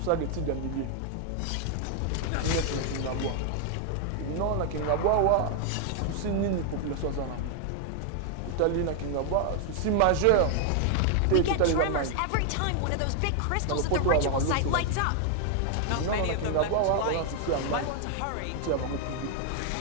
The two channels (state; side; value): different; both; correlation 0.00